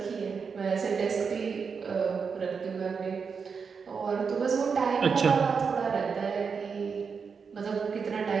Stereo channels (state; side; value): quieter; left; 5.7 dB